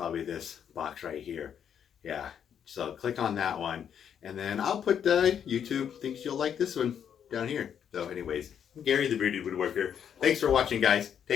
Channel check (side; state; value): right; quieter; 8.5 dB